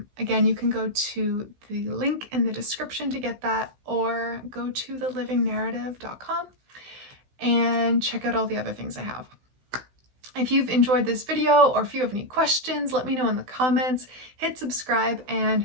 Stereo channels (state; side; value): late; left; 16 ms